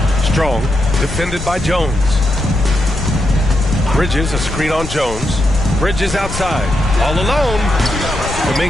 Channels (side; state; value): left; noise; rumble, 9 dB below the sound